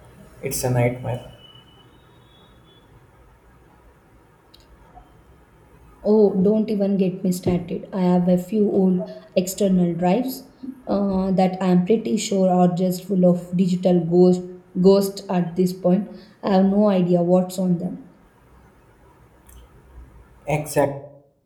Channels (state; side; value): identical; both; correlation 1.00